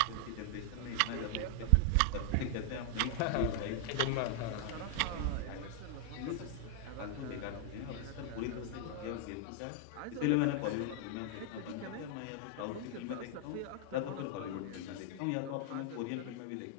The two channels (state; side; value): different; both; correlation 0.00